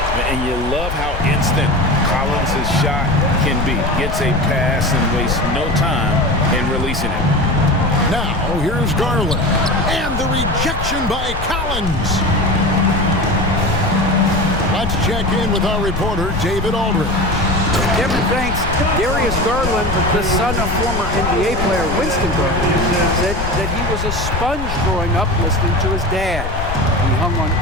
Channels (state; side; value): noise; left; rumble, 6 dB below the sound